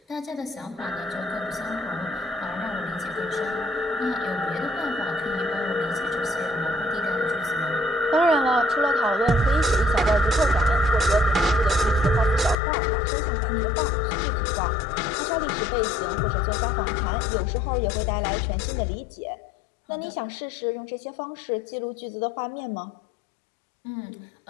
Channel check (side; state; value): right; drops out; at 12.6 s